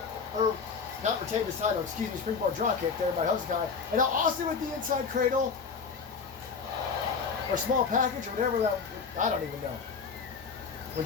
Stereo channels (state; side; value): quieter; right; 5.5 dB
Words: or not retained his title, excuse me, springboard drop kick there by Hosakai. And now Austin with the inside cradle, or small package, or whatever that, I don't even know. When